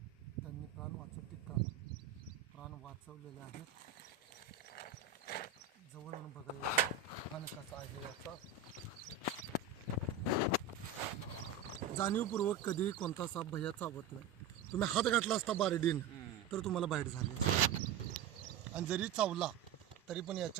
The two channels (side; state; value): left; quieter; 6.7 dB